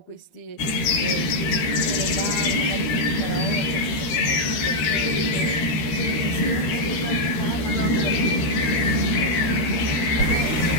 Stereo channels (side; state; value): right; late; 13 ms